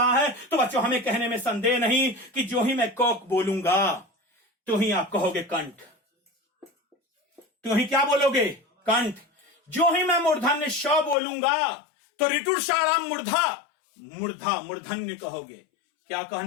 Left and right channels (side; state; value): right; drops out; at 11.2 s